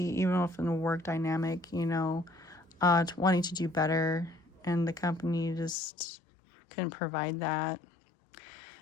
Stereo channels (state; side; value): drops out; right; at 5.8 s